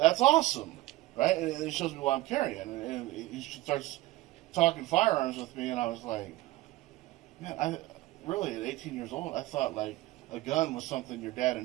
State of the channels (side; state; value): left; quieter; 18.1 dB